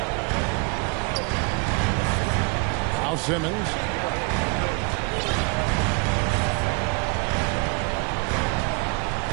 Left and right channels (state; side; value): quieter; left; 30.6 dB